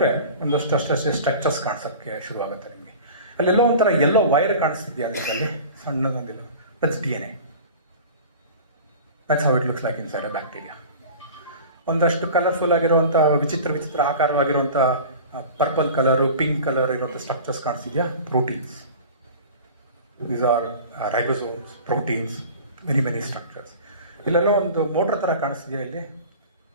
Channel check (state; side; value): inverted; both; correlation -0.39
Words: ಒಂದಷ್ಟು ಅಷ್ಟೇ ಸ್ಟ್ರಕ್ಚರ್ಸ್ ಕಾಣಿಸೋಕ್ಕೆ ಶುರುವಾಗುತ್ತೆ ನಿಮಗೆ. ಅಲ್ಲೆಲ್ಲೋ ಒಂಥರ ಎಲ್ಲೋ ವೈರ್ ಕಾಣಿಸ್ತಿದೆಯಾ ಅದರಲ್ಲಿ, ಸಣ್ಣದೊಂದಿಲ್ಲ. That's DNA. That's how it looks like inside a bacteria. ಒಂದಷ್ಟು ಕಲರ್ಫುಲ್ ಆಗಿರುವಂಥ ವಿಚಿತ್ರ ಆಕಾರವಾಗಿರುವಂಥ ಪರ್ಪಲ್ ಕಲರು, ಪಿಂಕ್ ಕಲರ್ ಇರುವಂಥ ಸ್ಟ್ರಕ್ಚರ್ಸ್ ಕಾಣಿಸ್ತಿದೆಯಾ, proteins. These are ribosomes, proteins, many structures. ಇಲ್ಲೆಲ್ಲೋ ಒಂದು ಮೋಟ್ರ್ ಥರ ಕಾಣಿಸ್ತಿದೆಯಾ ಇಲ್ಲಿ,